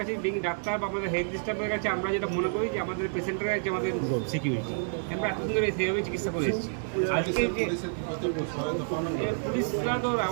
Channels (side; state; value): left; silent; digital silence